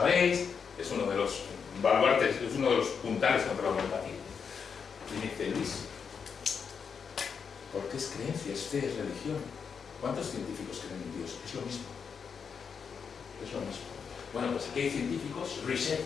es uno de los baluartes, es uno de los puntales contra la homeopatía. Y me dice, Luis, ¿por qué es creencia, es fe, es religión? ¿Cuántos científicos creen en Dios? Es lo mismo. Es lo mismo. Bueno, pues aquí hay científicos, Richet,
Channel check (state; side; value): quieter; right; 6.3 dB